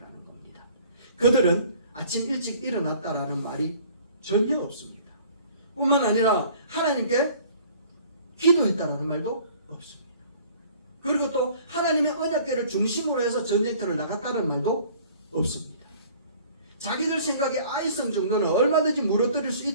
겁니다. 그들은 아침 일찍 일어났다라는 말이 전혀 없습니다. 뿐만 아니라 하나님께 기도했다라는 말도 없습니다. 그리고 또 하나님의 언약궤를 중심으로 해서 전쟁터를 나갔다는 말도 없습니다. 자기들 생각에 아이성 정도는 얼마든지 무너뜨릴 수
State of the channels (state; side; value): inverted; both; correlation -0.52